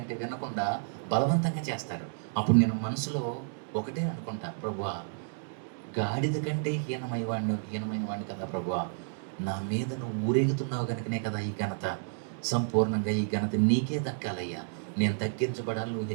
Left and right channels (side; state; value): left; silent; digital silence